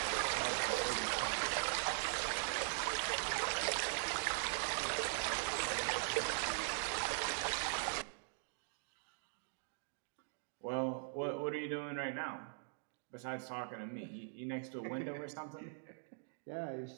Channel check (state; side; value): silent; left; digital silence